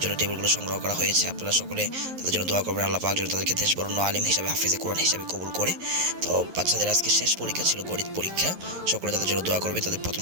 জন্য টেবিলগুলো সংগ্রহ করা হয়েছে। আপনারা সকলে তাদের জন্য দোয়া করবেন, আল্লাহ পাক যেন তাদেরকে দেশ বরণ্য আলিম হিসাবে, হাফিজে কোরআন হিসাবে কবুল করে। তো বাচ্চাদের আজকে শেষ পরীক্ষা ছিল, গণিত পরীক্ষা। সকলে তাদের জন্য দোয়া করবেন। তাদের প্রথম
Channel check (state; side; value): late; left; 11 ms